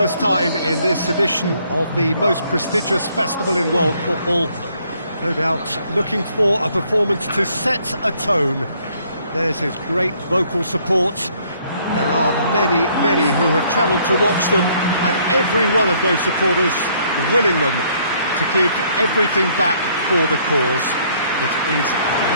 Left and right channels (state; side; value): inverted; both; correlation -0.65